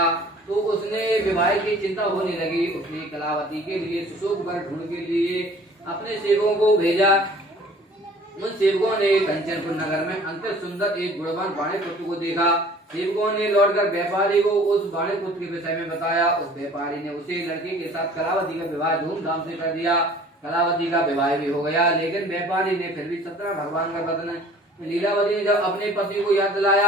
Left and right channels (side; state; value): both; normal; correlation 0.50